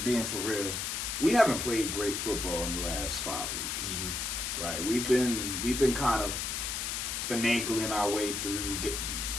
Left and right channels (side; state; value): left; noise; hiss, 2 dB below the sound